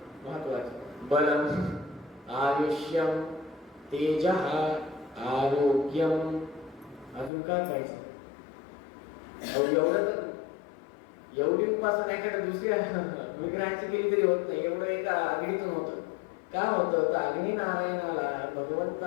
महत्वाचं, बलम, आयुष्यम, तेजः, आरोग्यम. अजून काय पाहिजे? एवढं तर एवढी उपासना एखाद्या दुसऱ्या विग्रहाची केली तरी होत नाही. एवढं एका अग्नीतून होतं. का होतं? तर अग्नी नारायणाला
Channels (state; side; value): drops out; right; at 7.3 s